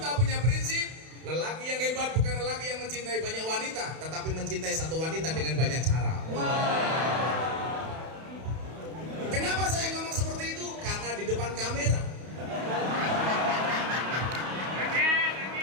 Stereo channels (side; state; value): left; late; 31 ms